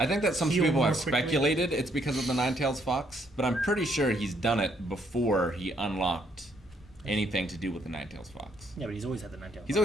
think that some Heal people more have quickly? speculated it's because of the Nine-Tails Fox, but I'm pretty sure he's done it before he unlocked anything to do with the Nine-Tails Fox. Yeah, but he's always had the nine-tailed He's fox.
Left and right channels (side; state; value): both; normal; correlation 0.70